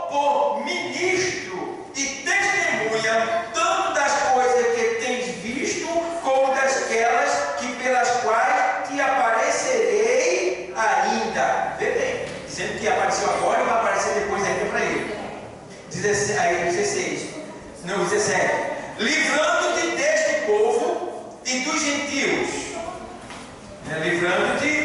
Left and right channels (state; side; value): identical; both; correlation 1.00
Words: por ministro e testemunha, tanto das coisas que tens visto, como dasquelas que pelas quais te aparecerei ainda. Vê bem, dizendo que apareceu agora e vai aparecer depois ainda para ele. 17. Livrando-te deste povo e dos gentios.